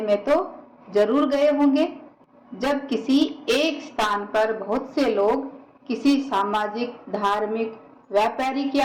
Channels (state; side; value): identical; both; correlation 1.00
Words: तो जरूर गए होंगे। जब किसी एक स्थान पर बहुत से लोग किसी सामाजिक, धार्मिक, व्यापारिक या